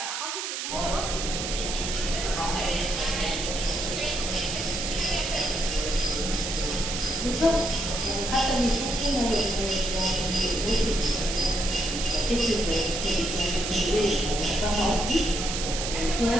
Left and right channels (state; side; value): noise; right; hiss, 4 dB below the sound